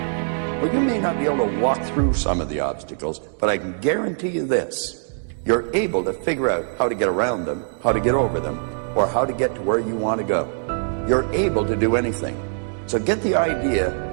Well, you may not be able to walk through some of the obstacles, but I can guarantee you this. You're able to figure out how to get around them, how to get over them, or how to get to where you want to go. You're able to do anything. So get the idea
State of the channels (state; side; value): silent; left; digital silence